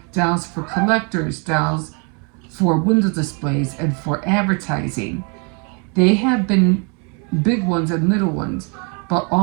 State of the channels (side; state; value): left; quieter; 35.0 dB